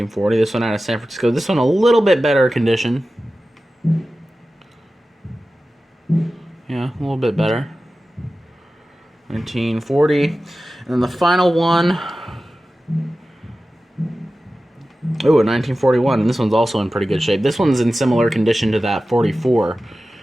This one out of San Francisco. This one a little bit better condition. Yeah, a little bit better. 1940. And then the final one. Oh, a 1941. And this one's also in pretty good shape. This one's in similar condition to that 44.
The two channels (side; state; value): both; normal; correlation 0.95